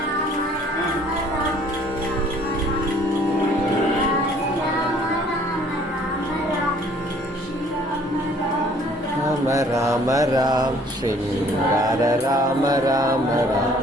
ராம ராம ராம் ஸ்ரீங்கார ராம ராம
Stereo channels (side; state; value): both; normal; correlation 0.57